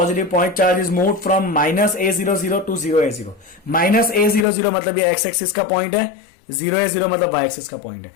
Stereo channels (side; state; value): right; drops out; at 4.5 s